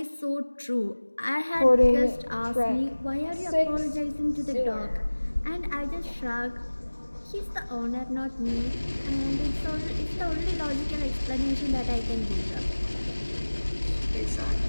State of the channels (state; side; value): inverted; both; correlation -1.00